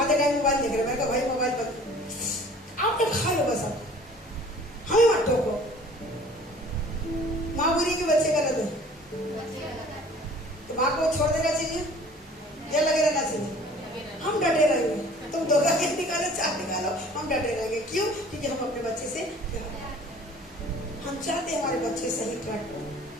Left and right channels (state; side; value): normal; both; correlation 0.49